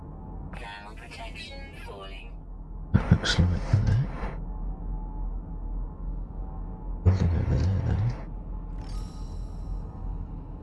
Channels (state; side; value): identical; both; correlation 1.00